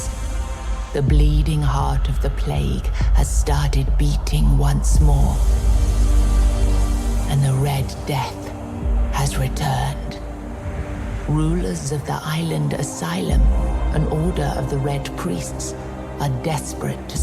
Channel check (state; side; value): identical; both; correlation 1.00